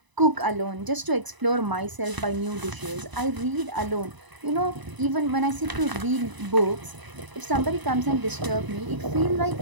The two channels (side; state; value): left; late; 1.0 ms